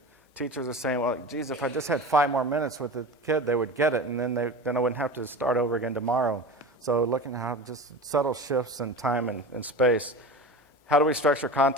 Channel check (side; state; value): both; normal; correlation 0.31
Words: Teachers are saying, well, geez, if I just had 5 more minutes with the kid, they would get it, and then I wouldn't have to start over again tomorrow. So looking at how just subtle shifts in time and space. How do we structure